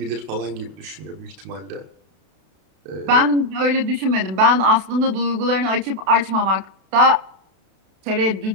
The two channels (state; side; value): late; left; 32 ms